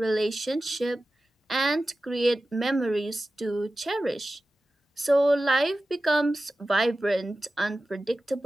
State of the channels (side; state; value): both; normal; correlation 0.95